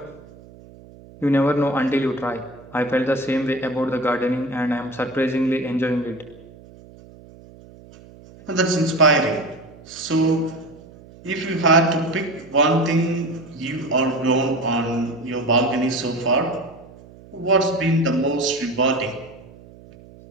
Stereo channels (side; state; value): right; noise; hum, 21 dB below the sound